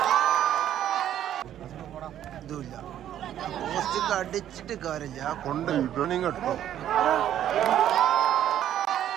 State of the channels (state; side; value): quieter; left; 11.1 dB